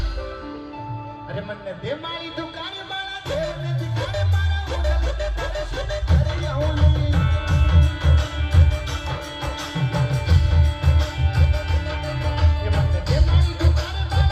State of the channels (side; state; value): both; identical; correlation 1.00